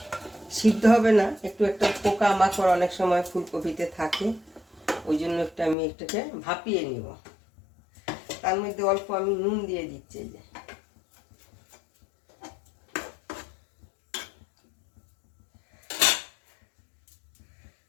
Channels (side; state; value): right; drops out; at 5.8 s